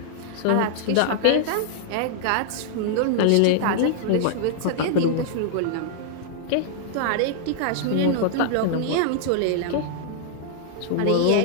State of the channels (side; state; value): both; different; correlation -0.01